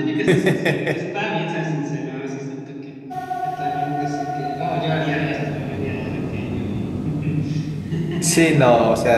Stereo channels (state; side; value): identical; both; correlation 1.00